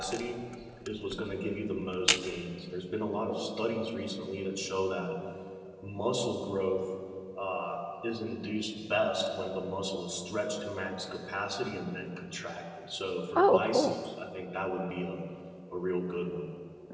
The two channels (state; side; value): identical; both; correlation 1.00